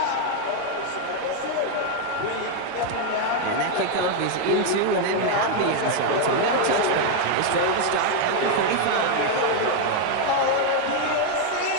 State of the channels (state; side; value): different; both; correlation 0.01